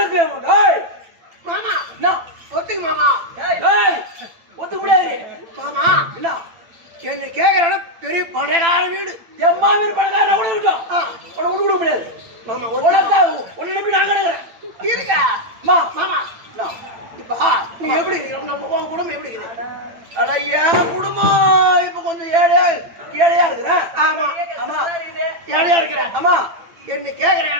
மாமா. ஒத்துக்கு மாமா. ஒத்துக்க முடியாது மாமா. என்ன என்ன கேக்குற பெரிய பணக்கார வீடு, என் மாமியார் பணக்காரனா கூட இருக்கும். உன்னை விட்டு கொடுக்க முடியாது மாமா. உனக்கா உன்னை நம்பி நான் கிடக்குறேன். இருக்கா மாமா? இப்ப நீ எப்படி இருக்கிற? நம்ம உன் குடும்பம் எப்படி இருக்குது? அட என் குடும்பம் இப்ப கொஞ்சம் ஏழையா இருக்கிறேன். ஆமா ஆமா, ஏழையா இருக்கிறேன். ஆமா. என்ன கேக்குற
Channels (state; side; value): late; left; 8.9 ms